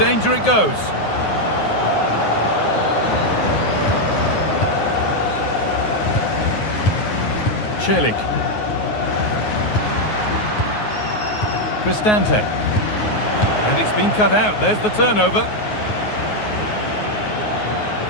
it goes. Celik. Cristante. And it's been cut out. There's the turnover.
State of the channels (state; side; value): late; right; 9.5 ms